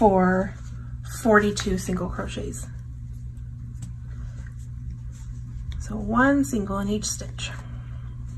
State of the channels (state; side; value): identical; both; correlation 1.00